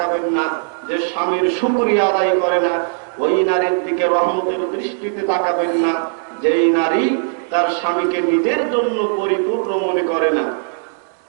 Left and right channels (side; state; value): left; silent; digital silence